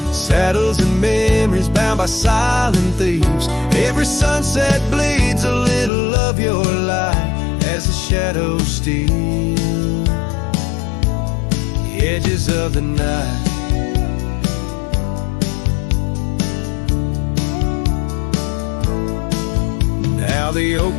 saddles and memories bound by silent thieves. Every sunset bleeds a little of your light as the shadows steal the edges of the night. Now the oak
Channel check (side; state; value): right; drops out; at 5.9 s